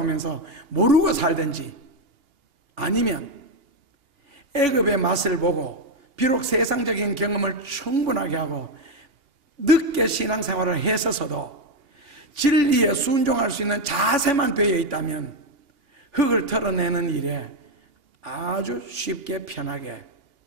모르고 살든지, 아니면 애굽의 맛을 보고 비록 세상적인 경험을 충분하게 하고 늦게 신앙생활을 했어서도 진리에 순종할 수 있는 자세만 되어 있다면 흙을 털어내는 일에 아주 쉽게 편하게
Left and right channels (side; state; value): left; late; 2.8 ms